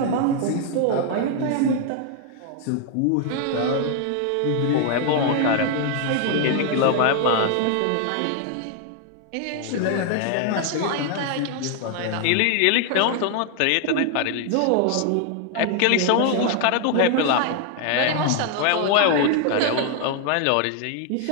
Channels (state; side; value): different; both; correlation 0.00